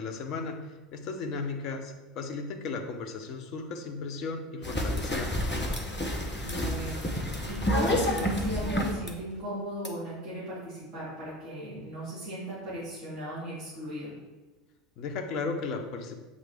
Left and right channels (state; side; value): normal; both; correlation 0.35